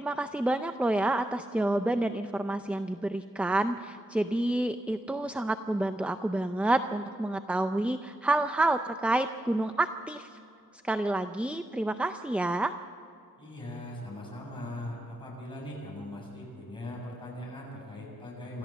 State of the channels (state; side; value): normal; both; correlation 0.87